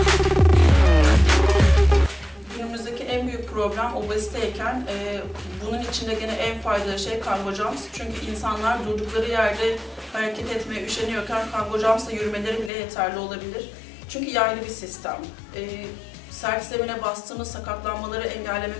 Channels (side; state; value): right; drops out; at 12.7 s